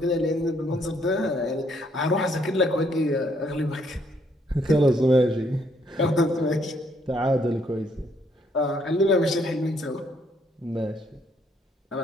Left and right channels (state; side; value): normal; both; correlation 0.70